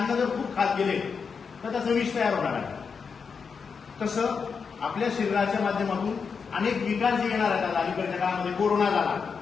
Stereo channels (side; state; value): right; quieter; 5.7 dB